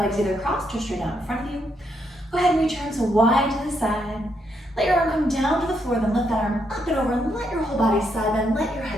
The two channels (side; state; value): both; normal; correlation 0.77